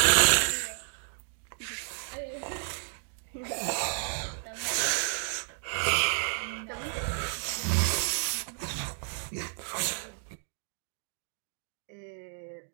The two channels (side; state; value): left; silent; digital silence